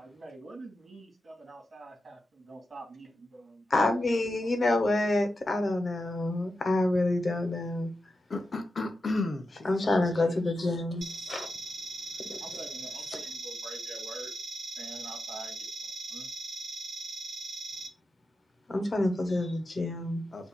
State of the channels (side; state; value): both; normal; correlation 0.89